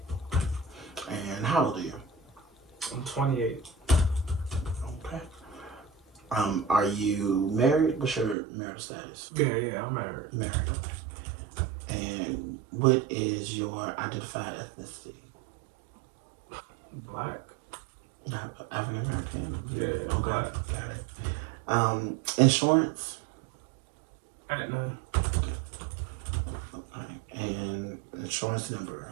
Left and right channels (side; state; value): left; drops out; at 8.3 s